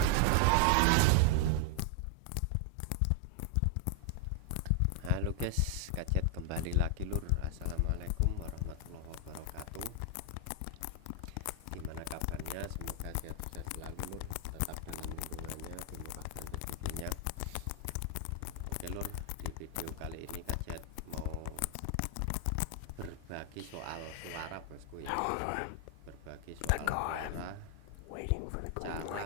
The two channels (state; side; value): different; both; correlation 0.00